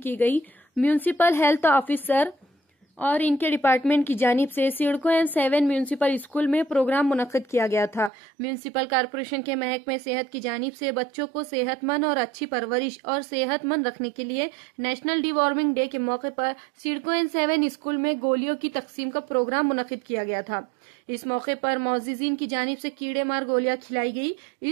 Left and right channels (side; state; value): left; drops out; at 8.1 s